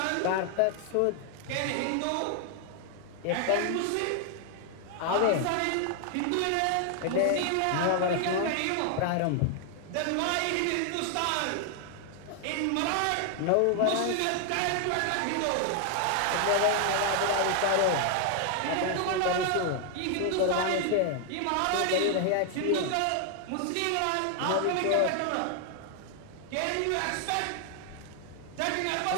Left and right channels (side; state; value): both; different; correlation 0.00